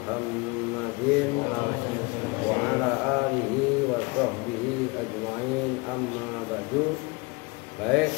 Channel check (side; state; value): right; quieter; 27.2 dB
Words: wa ala alihi wa sahbihi ajma'in, amma ba'du. Baik,